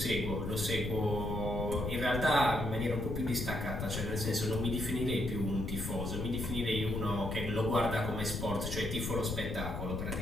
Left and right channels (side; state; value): left; noise; rumble, 4 dB below the sound